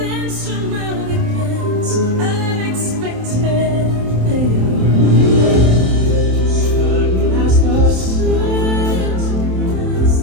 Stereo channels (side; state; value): left; late; 27 ms